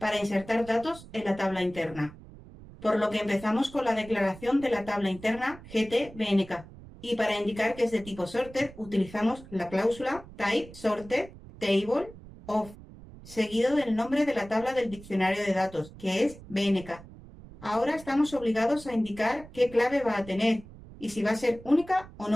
insertar datos en la tabla interna. Por lo que empezamos con la declaración de la tabla interna GT-BNK. Y para indicar que es de tipo sorted, utilizamos la cláusula type sorted table of, seguido del nombre de la tabla del diccionario de datos, que es BNK. Ahora estamos obligados a indicar qué clave va a tener y si va a ser única o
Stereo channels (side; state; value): right; noise; rumble, 18 dB below the sound